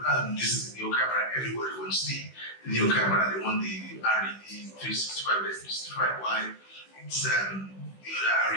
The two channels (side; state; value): right; late; 16 ms